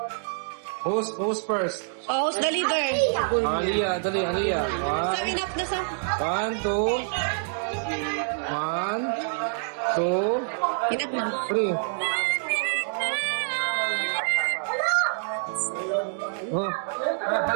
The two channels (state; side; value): silent; left; digital silence